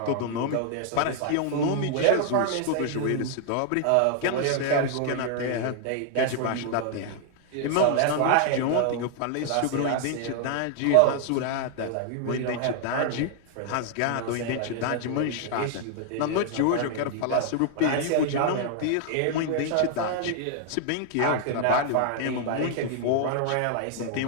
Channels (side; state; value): both; different; correlation 0.00